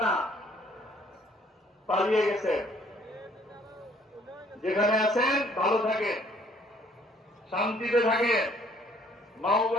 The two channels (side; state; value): both; normal; correlation 0.61